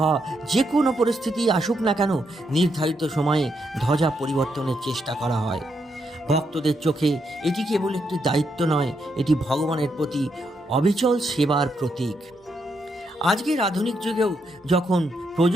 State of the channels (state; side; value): normal; both; correlation 0.79